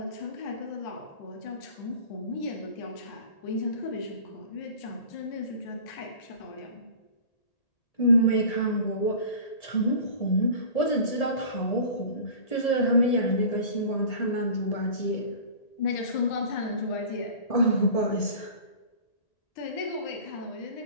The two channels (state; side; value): late; right; 1.8 ms